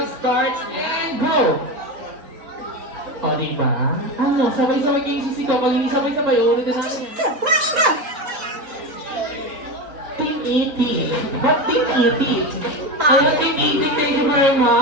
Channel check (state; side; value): late; left; 3.9 ms